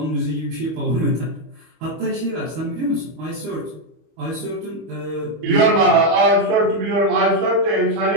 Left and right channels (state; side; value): late; left; 25 ms